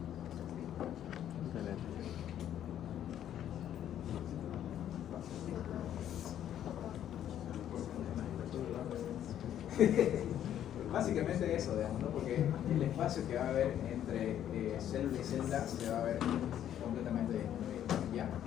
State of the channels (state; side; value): quieter; right; 10.7 dB